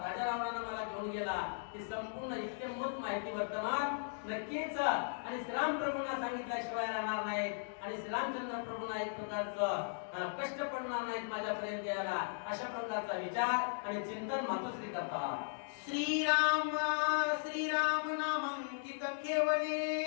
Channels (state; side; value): silent; right; digital silence